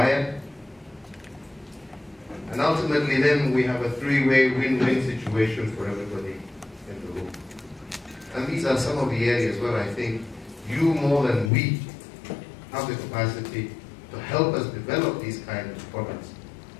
And ultimately then we have a three-way win-win situation for everybody in the room. And these are some of the areas where I think you more than we have the capacity to help us develop these kinds of products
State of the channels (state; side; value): drops out; right; at 11.5 s